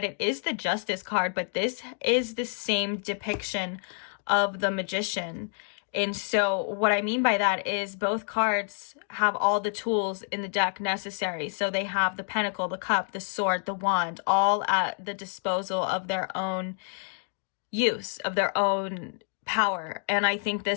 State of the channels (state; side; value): silent; right; 56 dB below the other